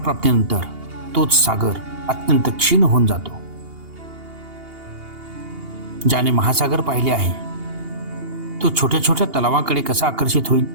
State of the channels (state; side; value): late; left; 2.8 ms